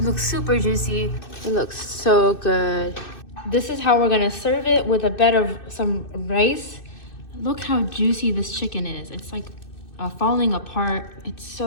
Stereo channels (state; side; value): late; right; 2.6 ms